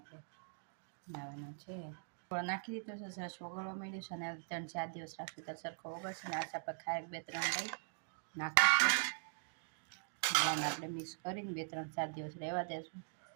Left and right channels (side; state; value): left; silent; digital silence